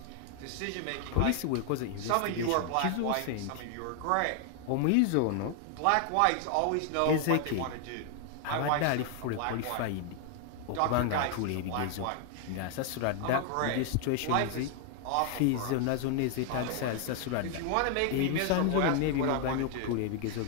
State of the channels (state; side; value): different; both; correlation 0.00